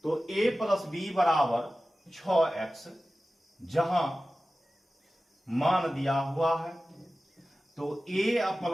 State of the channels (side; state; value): both; normal; correlation 0.95